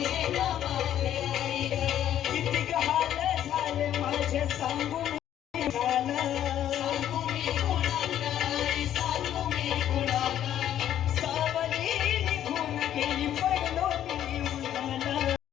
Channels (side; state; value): right; quieter; 11.0 dB